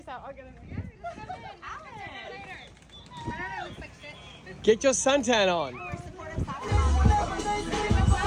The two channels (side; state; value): both; identical; correlation 1.00